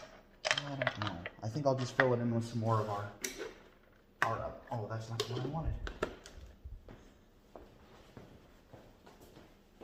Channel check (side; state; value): both; identical; correlation 1.00